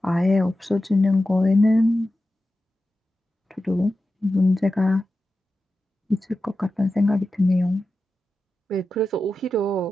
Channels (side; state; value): both; normal; correlation 0.92